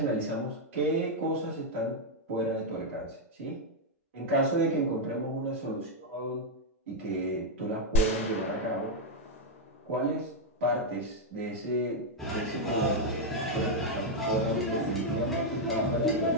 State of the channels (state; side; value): normal; both; correlation 0.00